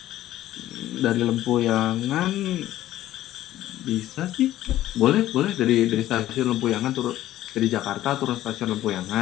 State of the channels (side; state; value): right; quieter; 14.0 dB